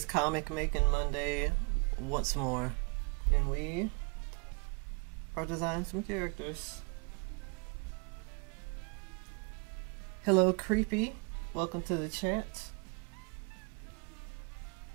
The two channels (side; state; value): left; quieter; 31.4 dB